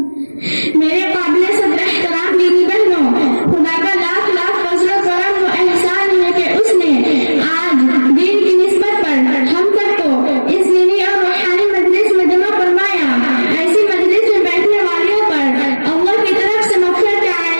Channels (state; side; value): inverted; both; correlation -1.00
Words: میرے قابل صدر احترام دینی بہنوں، خدا کا لاکھ لاکھ فضل و کرم و احسان ہے کہ اس نے آج دین کی نسبت پر ہم سب کو اس دینی اور روحانی مجلس میں جمع فرمایا. ایسی مجلس میں بیٹھنے والیوں پر اللہ کی طرف سے مغفرت کا